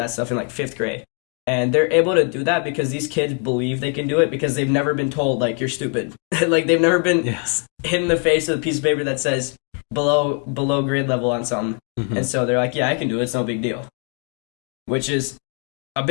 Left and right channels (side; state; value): right; quieter; 38.1 dB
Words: stuff in like 5th grade, and they're able to do that because these kids believe they can do it because they've never been told like you're stupid. Like, they've never been hit in the face with a piece of paper that says below grade level on something, and so they're like, yeah, I can do it. It's no big deal, which is a